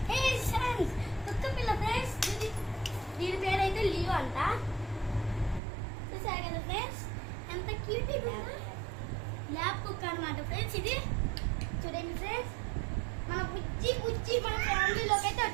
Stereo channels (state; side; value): drops out; left; at 5.6 s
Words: కుక్క పిల్ల ఫ్రెండ్స్, దీని పేరు అయితే లియో అంట. చూసారు కదా ఫ్రెండ్స్, ఎంత క్యూట్ ల్యాబ్ కుక్క అనమాట ఫ్రెండ్స్. ఇది చూడండి ఫ్రెండ్స్, మన బుజ్జి మన ఫ్యామిలీలోకి అయితే